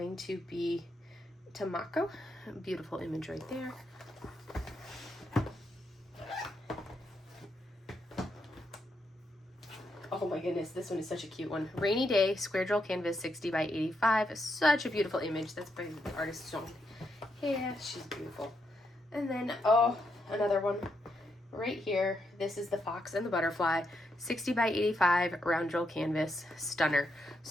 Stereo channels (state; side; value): normal; both; correlation 0.80